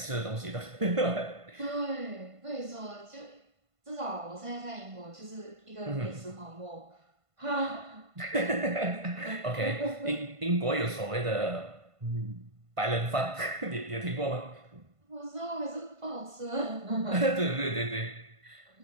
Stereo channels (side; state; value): left; late; 1.5 ms